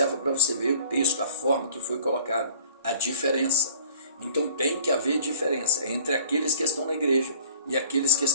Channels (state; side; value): inverted; both; correlation -0.48